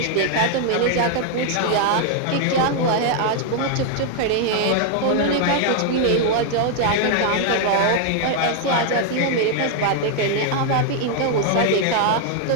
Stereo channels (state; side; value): different; both; correlation 0.00